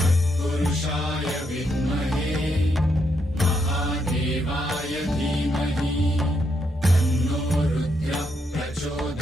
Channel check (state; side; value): normal; both; correlation 0.78